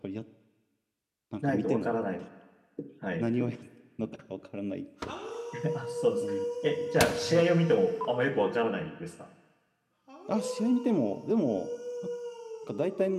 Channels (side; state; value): both; identical; correlation 1.00